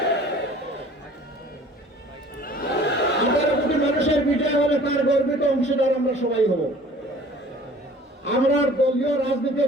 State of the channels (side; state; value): both; normal; correlation 0.49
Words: 18 কোটি মানুষের বিজয় হলে তার গর্বিত অংশীদার আমরা সবাই হব। আমরা দলীয়